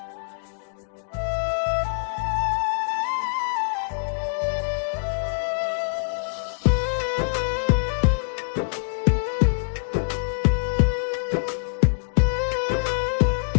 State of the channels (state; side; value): silent; right; digital silence